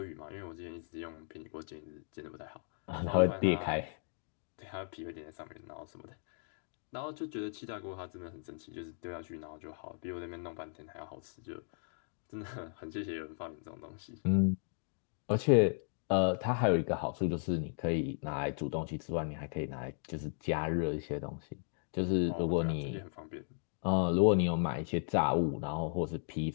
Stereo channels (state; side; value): silent; right; 54 dB below the other